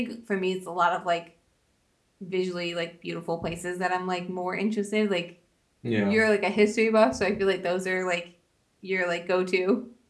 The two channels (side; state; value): both; identical; correlation 1.00